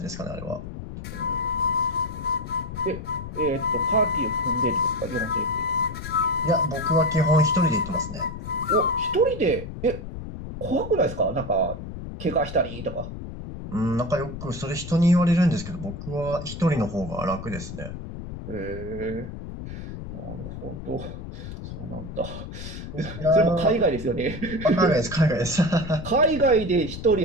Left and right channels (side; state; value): left; noise; rumble, 9 dB below the sound